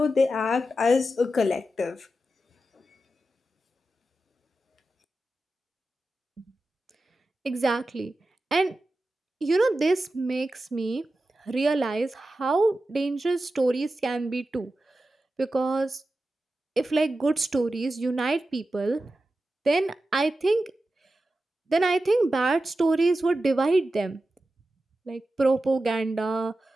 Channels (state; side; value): normal; both; correlation 0.92